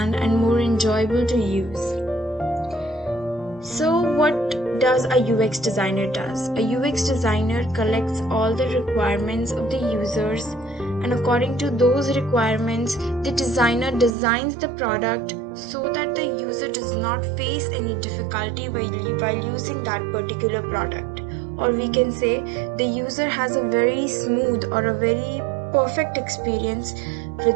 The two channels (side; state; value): left; drops out; at 14.1 s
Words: and more enjoyable to use. So what does a UX designer does? A UX designer collects all the requirements of the users, and according to those requirements, the designer designs the product so that the user does not face any difficulty while using that particular product. Or we can say the user has a very smooth or a very perfect experience